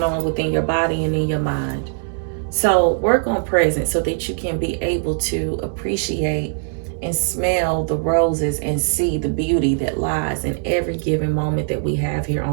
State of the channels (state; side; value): silent; left; 65 dB below the other